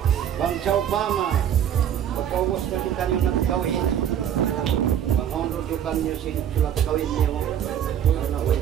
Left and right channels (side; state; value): left; quieter; 9.6 dB